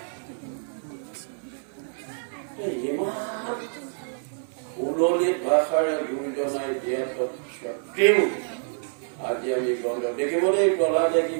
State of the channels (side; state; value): left; silent; 58 dB below the other